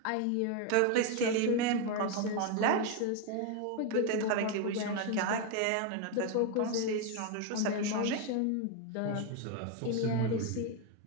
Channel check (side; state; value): both; different; correlation 0.01